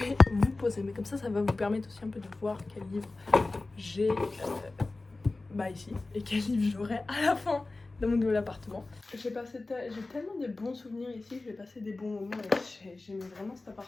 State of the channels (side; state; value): right; quieter; 3.3 dB